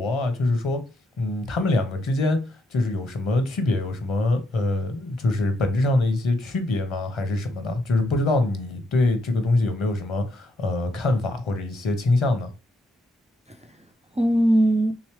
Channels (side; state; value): both; normal; correlation 0.79